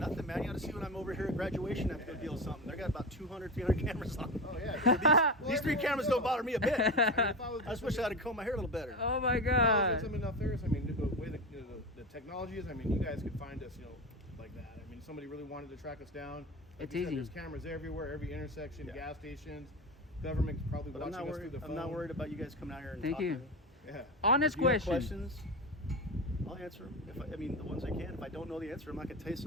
man. You ought to see when I'm over here at graduation, I have to go deal with something. They got about 200, 300 cameras on them. Oh, yeah. These 3 cameras don't bother me a bit. I mean, if I was I just wish I had combed my hair a little better. Oh my If I was God. in something else there, I mean, the way the technology is, I mean, you guys could find us, you know, like that. I mean, if somebody really wanted to track us down. Like It's you said, easy. There's cameras everywhere, every intersection, Yeah. gas stations. Government's probably But I'm watching not us through worried. the phone. I'm not worried about you guys coming out here and Thank talking. you. Yeah. Honest If you have question. questions, I'll answer them. I mean, the ones I can. If I don't know the answer, I'm not going to tell you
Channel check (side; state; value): both; normal; correlation 0.22